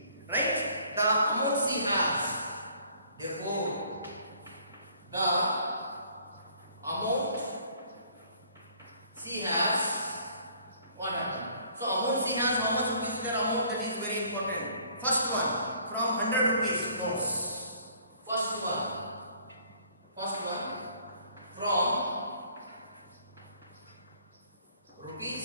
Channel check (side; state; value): both; inverted; correlation -0.58